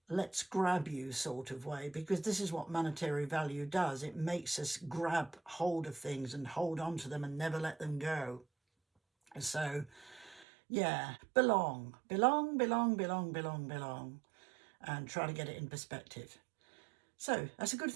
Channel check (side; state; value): left; drops out; at 10.5 s